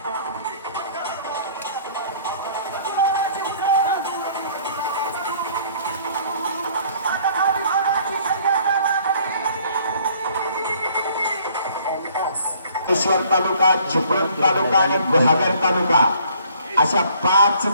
ईश्वर तालुका, चिपळूण तालुका आणि गुहागर तालुका अशा 5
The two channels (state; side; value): inverted; both; correlation -0.58